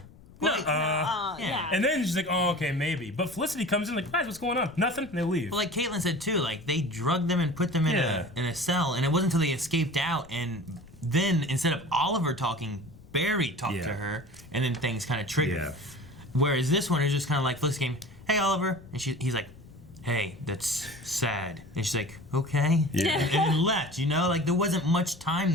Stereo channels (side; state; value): left; noise; rumble, 22 dB below the sound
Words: no, yeah. And then she's like, oh, okay, maybe. But Felicity comes in like, guys, what's going on? Nothing. And they leave. Well, like Caitlin said too, like they drugged them and put them in a cell, and it wasn't until they escaped out, and then instead of Oliver talking, Barry talked to her, and then things kind of triggered. Yeah. Whereas this one is just kind of like Felicity came, hey Oliver, and he's like, hey, that's sad, and she's like, okay, and then left. Like there wasn't much time